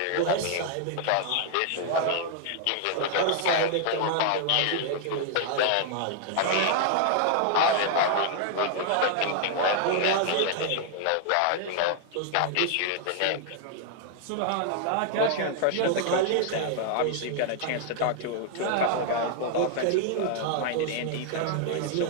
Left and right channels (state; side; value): different; both; correlation 0.00